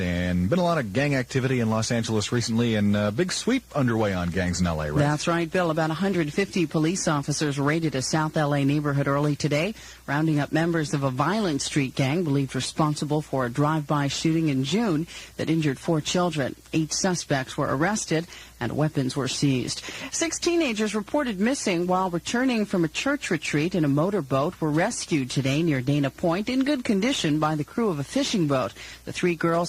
been a lot of gang activity in Los Angeles recently, and a big sweep underway on gangs in L.A., right? That's right, Bill. About 150 police officers raided a South L.A. neighborhood early today, rounding up members of a violent street gang believed responsible for a drive-by shooting in June that injured 4 children. 8 suspects were arrested and weapons were seized. 6 teenagers reported missing while returning from a church retreat in a motorboat were rescued today near Dana Point in good condition by the crew of a fishing boat. The 3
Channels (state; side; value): identical; both; correlation 1.00